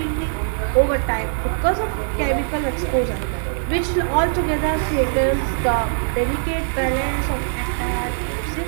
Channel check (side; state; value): left; silent; digital silence